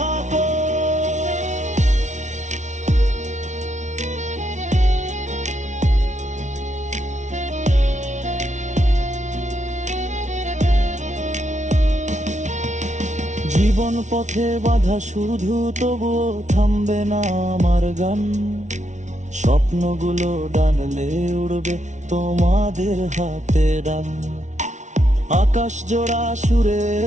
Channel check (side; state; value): left; late; 0.35 ms